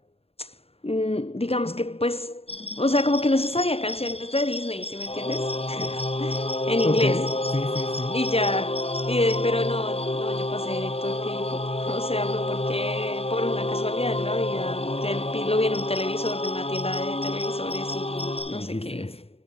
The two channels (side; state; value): right; late; 0.29 ms